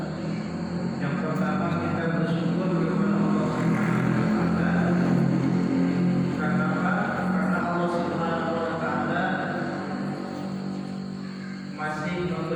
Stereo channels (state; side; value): identical; both; correlation 1.00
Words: Yang pertama kita bersyukur kepada Allah Subhanahu wa taala. Karena apa? Karena Allah Subhanahu wa taala masih